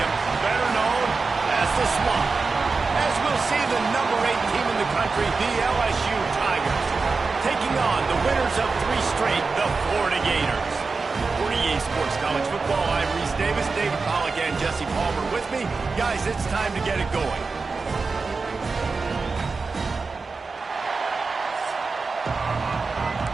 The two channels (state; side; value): quieter; left; 4.3 dB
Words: better known as the Swamp. As we'll see the number 8 team in the country, the LSU Tigers, taking on the winners of 3 straight, the Florida Gators. For EA Sports College Football, I'm Reese Davis, David Pollack, and Jesse Palmer with me. Guys, it's time to get it going.